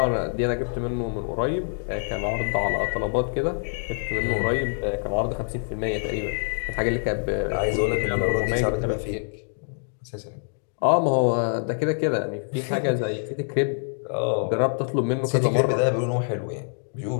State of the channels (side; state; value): right; silent; digital silence